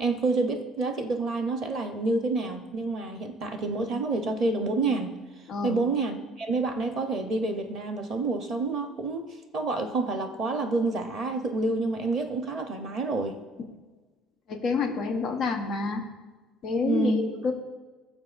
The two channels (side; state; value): both; normal; correlation 0.57